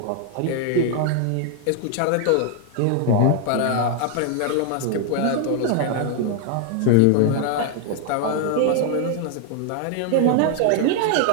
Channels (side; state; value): both; different; correlation 0.00